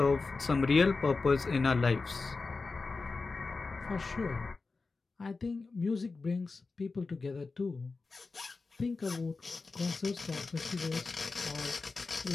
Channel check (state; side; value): quieter; right; 4.0 dB